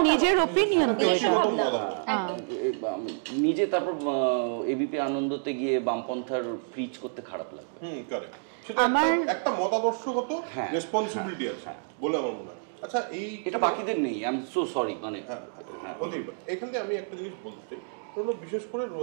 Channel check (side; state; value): left; silent; digital silence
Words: নিজের অপিনিয়ন তো, এটা নিজে তারপর এবিপি আনন্দতে গিয়ে বামপন্থার প্রিচ করতে খারাপ লাগবে। কারেক্ট, সেটা একটা মতাদর্শগত রেসপন্সিবিলিটি আছে বলে আমার মনে হয়। আচ্ছা, এটা বাকিদের নেই, আই এম সো সরি। মানে এখান থেকে আমি একটা জিনিস বলতে চাই, বিশেষ করে